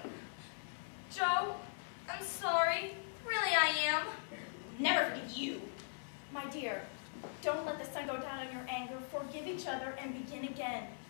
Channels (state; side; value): silent; right; 51 dB below the other